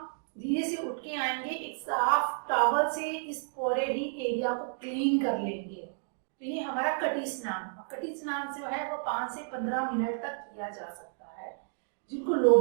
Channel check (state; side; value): silent; left; digital silence